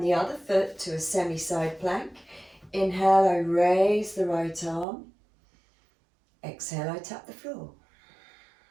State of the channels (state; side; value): drops out; left; at 4.9 s